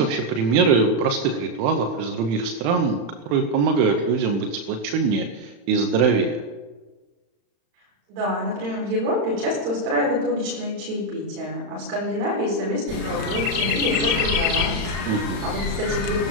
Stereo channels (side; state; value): left; late; 35 ms